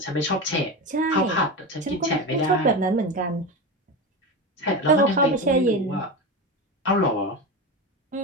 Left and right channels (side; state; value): both; normal; correlation 0.21